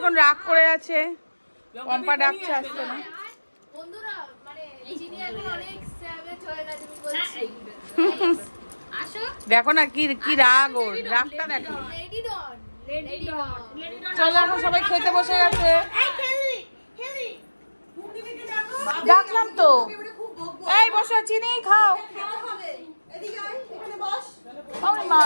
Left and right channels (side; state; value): both; inverted; correlation -1.00